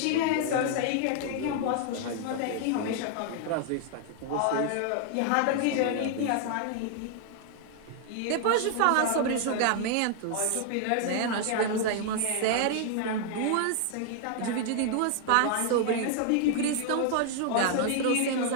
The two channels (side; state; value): both; different; correlation 0.00